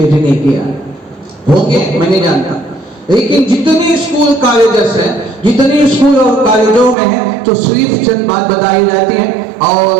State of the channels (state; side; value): drops out; left; at 7.0 s